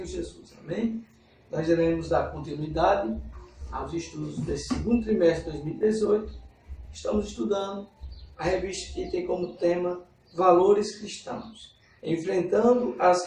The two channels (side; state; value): both; identical; correlation 1.00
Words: Jesus. Amém? Nós iremos dar continuidade aos estudos desse segundo trimestre de 2018. Estamos estudando a revista que tem como tema Valores Cristãos, enfrentando as